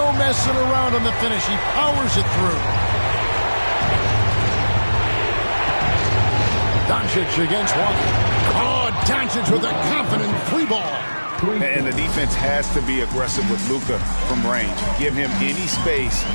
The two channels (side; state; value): both; inverted; correlation -1.00